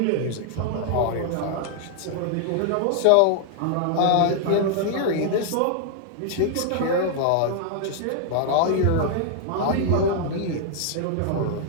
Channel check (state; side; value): different; both; correlation -0.01